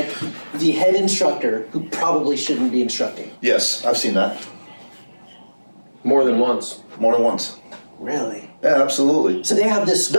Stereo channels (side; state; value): both; inverted; correlation -1.00